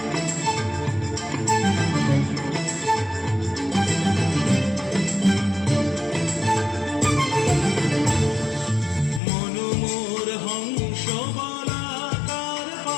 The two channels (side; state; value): right; drops out; at 9.2 s